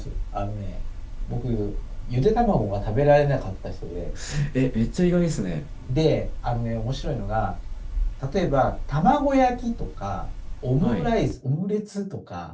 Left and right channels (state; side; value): identical; both; correlation 1.00